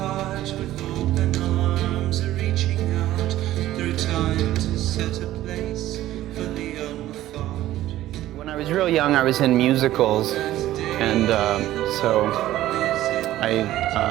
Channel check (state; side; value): quieter; left; 14.4 dB